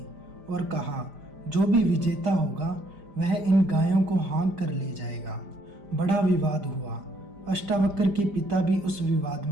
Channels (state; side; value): late; left; 5.0 ms